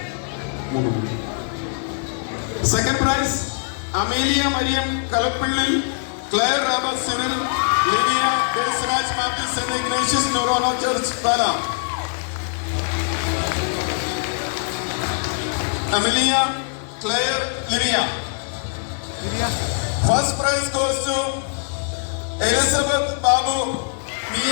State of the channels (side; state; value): right; silent; 64 dB below the other